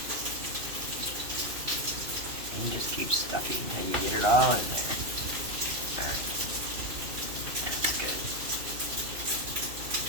And just keep stuffing until you get it all in there. Alright. That's good.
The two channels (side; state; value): left; late; 2.5 ms